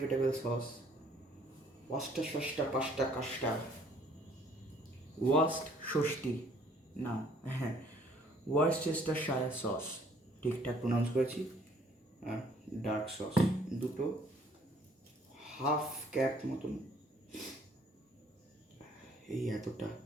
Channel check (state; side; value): normal; both; correlation 0.60